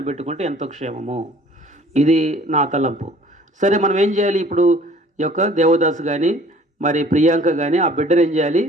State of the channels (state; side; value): normal; both; correlation 0.52